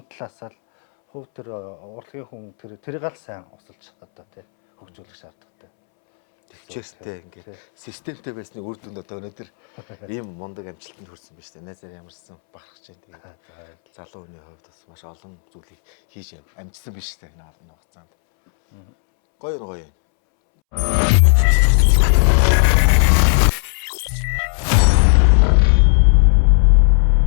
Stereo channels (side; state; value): right; silent; 68 dB below the other